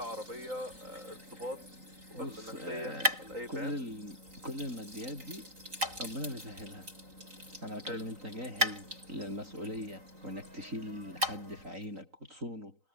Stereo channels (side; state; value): left; late; 3.9 ms